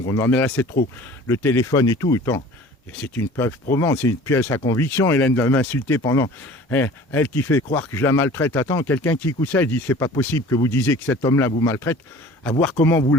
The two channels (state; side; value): normal; both; correlation 0.45